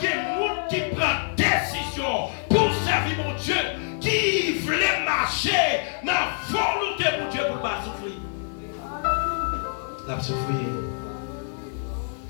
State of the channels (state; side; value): silent; right; 61 dB below the other